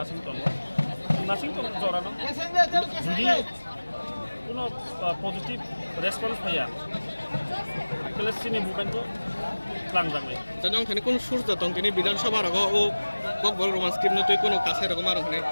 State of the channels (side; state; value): both; inverted; correlation -1.00